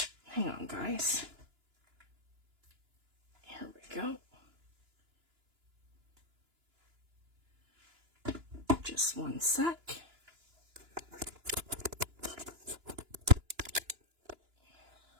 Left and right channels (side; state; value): left; late; 2.9 ms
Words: Hang on, guys. Here we go. Just one sec.